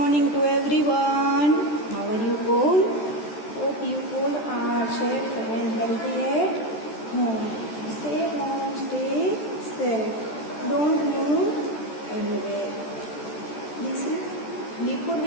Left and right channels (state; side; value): late; right; 14 ms